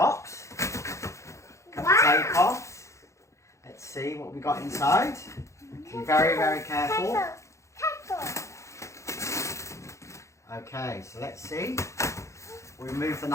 cut the tape off, let's see what we got inside. Be very, very careful. Okay, so let's see, we move the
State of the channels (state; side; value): late; right; 0.14 ms